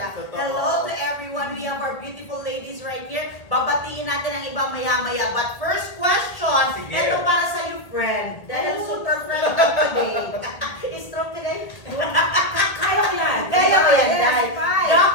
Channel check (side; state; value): right; late; 1.8 ms